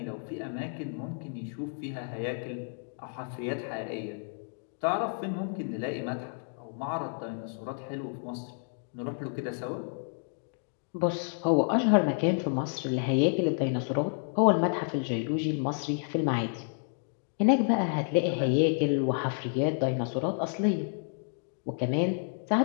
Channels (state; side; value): silent; right; 58 dB below the other